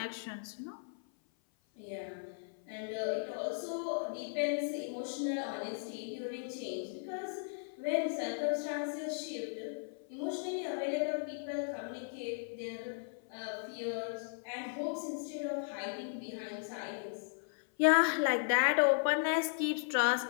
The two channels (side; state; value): right; silent; 53 dB below the other